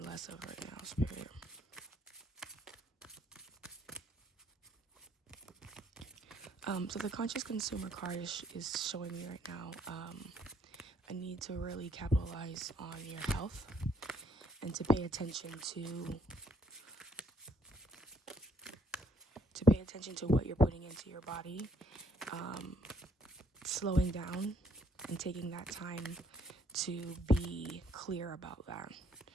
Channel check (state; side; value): normal; both; correlation 0.66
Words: of right now, Spirit? So the conscious consumer card is showing me right now a need to really capitalize on your health and to pay attention to what you're putting into your body, slowing down and taking that time to be clear about that.